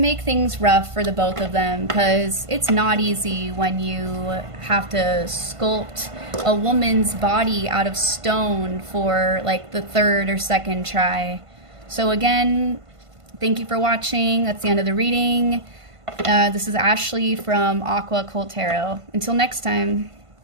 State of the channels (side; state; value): left; late; 1.5 ms